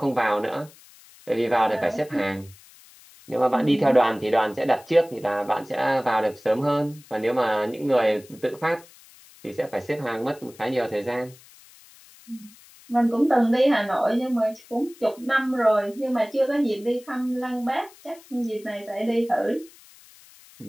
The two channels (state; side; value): noise; left; hiss, 24 dB below the sound